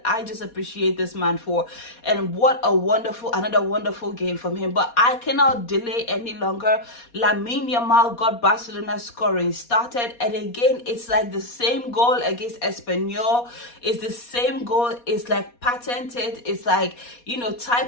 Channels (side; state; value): right; late; 4.2 ms